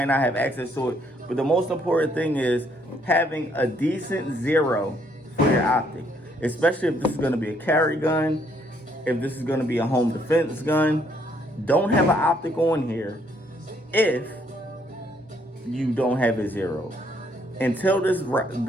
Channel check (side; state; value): both; normal; correlation 0.68